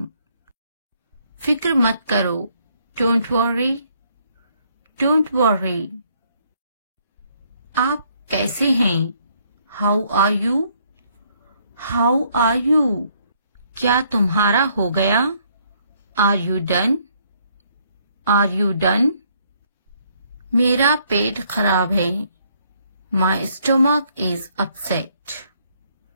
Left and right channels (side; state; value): both; inverted; correlation -0.67